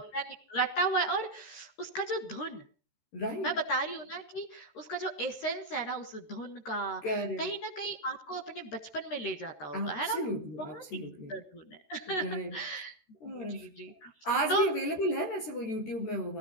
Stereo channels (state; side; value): late; right; 13 ms